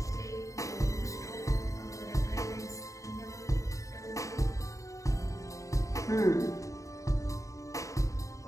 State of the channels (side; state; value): right; late; 0.16 ms